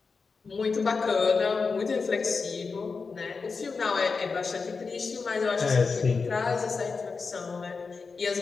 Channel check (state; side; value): quieter; right; 4.7 dB